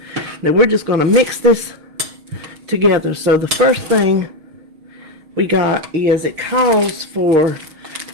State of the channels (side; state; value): left; late; 6.4 ms